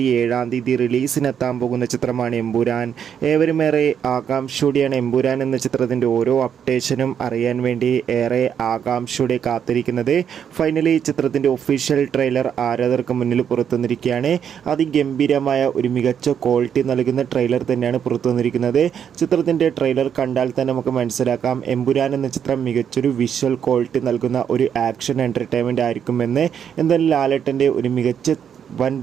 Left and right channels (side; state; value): left; quieter; 8.3 dB